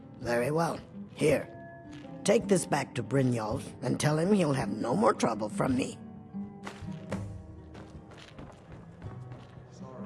Very well. Here. Take this back to Brynjolf and tell him he'll have no more trouble from me.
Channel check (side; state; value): both; identical; correlation 1.00